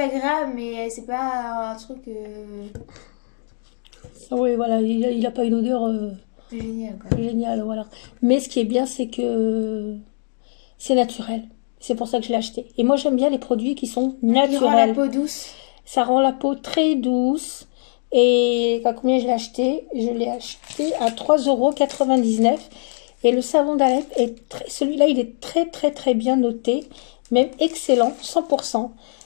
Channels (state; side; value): silent; right; digital silence